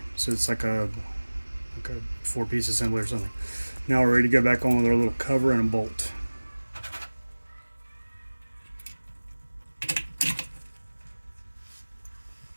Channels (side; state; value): both; inverted; correlation -1.00